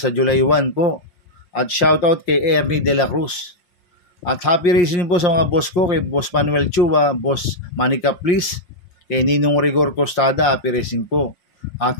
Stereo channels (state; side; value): late; right; 5.6 ms